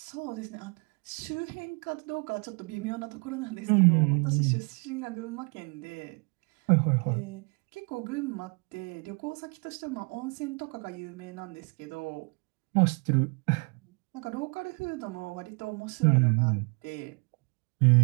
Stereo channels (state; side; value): quieter; left; 33.1 dB